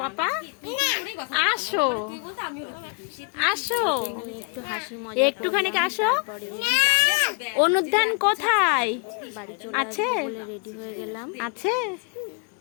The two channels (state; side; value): quieter; right; 36.7 dB